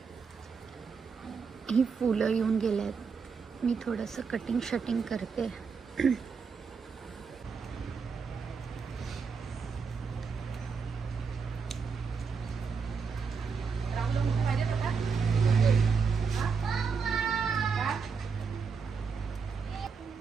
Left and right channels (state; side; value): quieter; left; 5.5 dB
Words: ही फुलं येऊन गेल्यात. मी थोडंसं कटिंग शटिंग करते.